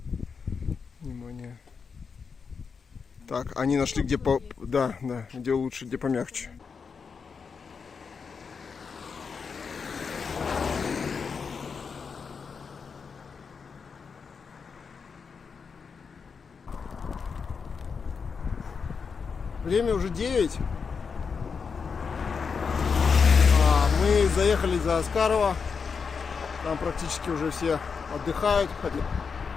Внимание. Так, они нашли, где по... Да, где лучше, где помягче. Время уже 9. Мы заехали за Аскарова. Там практически уже все отдыхают.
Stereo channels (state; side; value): quieter; right; 5.6 dB